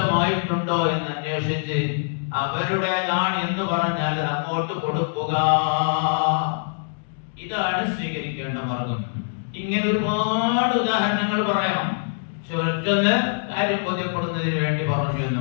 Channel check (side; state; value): right; silent; digital silence